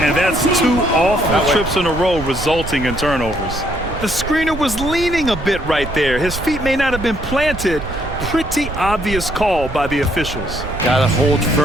And that's 2 awful trips in a row resulting in turnovers. The screener was leaning a bit right there. His feet may not have been planted. Pretty obvious call by the officials. Gotta hold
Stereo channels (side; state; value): right; noise; rumble, 9 dB below the sound